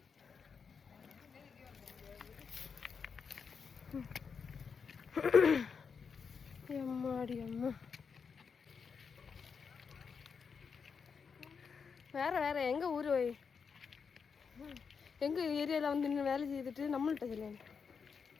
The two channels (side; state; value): right; quieter; 5.9 dB